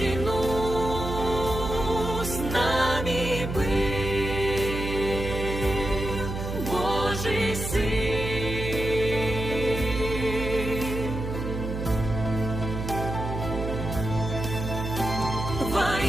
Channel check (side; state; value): right; noise; hum, 5 dB below the sound